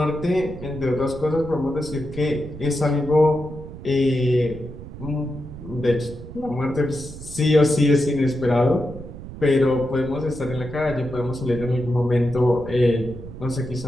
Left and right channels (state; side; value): noise; right; rumble, 13 dB below the sound